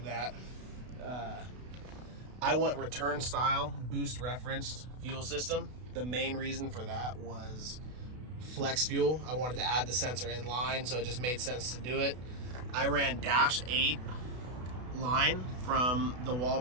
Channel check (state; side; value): late; left; 32 ms